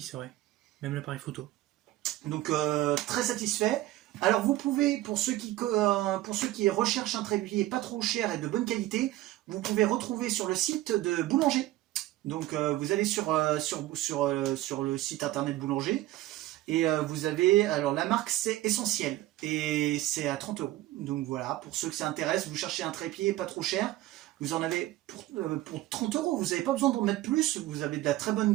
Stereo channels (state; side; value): quieter; left; 15.9 dB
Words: c'est vrai. Même l'appareil photo. Donc très satisfait. Alors vous pouvez, pour ceux qui recherchent un trépied pas trop cher et de bonne qualité, vous pouvez retrouver sur le site de Boulanger. Donc vous allez sur le site internet Boulanger et vous avez, alors la marque c'est Essentiel et c'est à 30 €. Donc voilà, pour ceux que ça intéresse, vous cherchez un trépied pas trop cher, vous en avez pour 30 €, vous n'avez pas besoin d'en mettre plus, vous avez de la très bonne